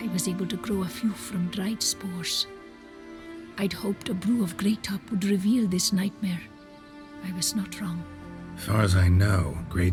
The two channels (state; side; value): identical; both; correlation 1.00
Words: was able to grow a few from dried spores. I'd hoped a brew of grey top would reveal this nightmare. I was not wrong. Far as I know, grey